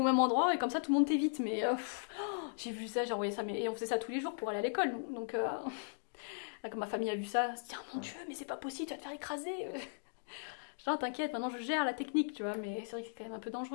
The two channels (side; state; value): right; silent; digital silence